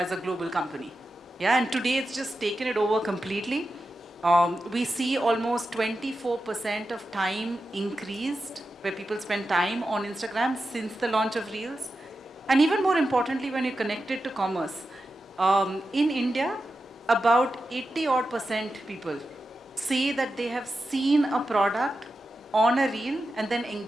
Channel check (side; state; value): both; normal; correlation 0.91